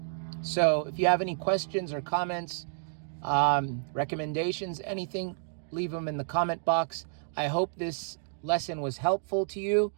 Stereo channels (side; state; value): left; silent; digital silence